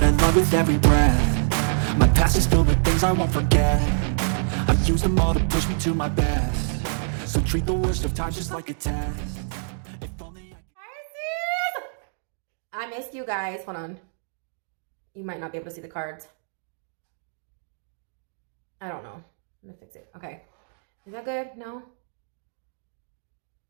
I love with every breath. My past is filled with things I won't forget. I've used them all to push me to my best. So treat the worst of times just like a test. If only Pisces! I missed you guys. Hold on. You might not be able to see the cards. I don't know. I'm gonna fix it. Okay. Is that good? No?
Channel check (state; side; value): silent; left; 62 dB below the other